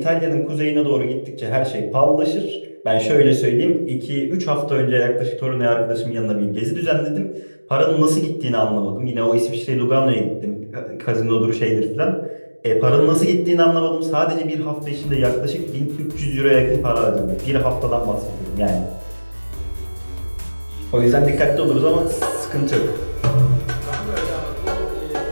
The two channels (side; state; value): both; inverted; correlation -1.00